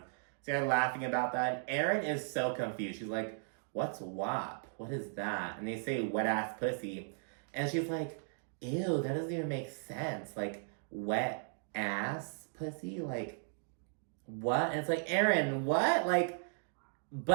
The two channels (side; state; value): left; silent; digital silence